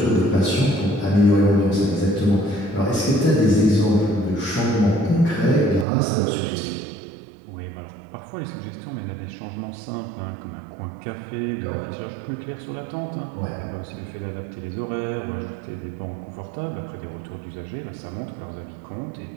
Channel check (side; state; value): left; drops out; at 5.9 s